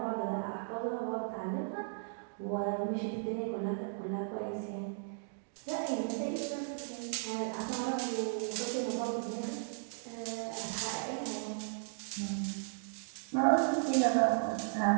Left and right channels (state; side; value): silent; left; digital silence